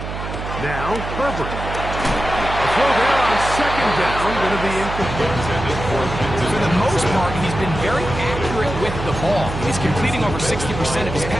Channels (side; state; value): right; noise; hum, 7 dB below the sound